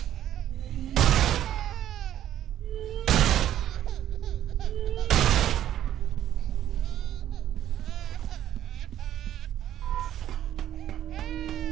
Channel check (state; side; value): quieter; left; 11.7 dB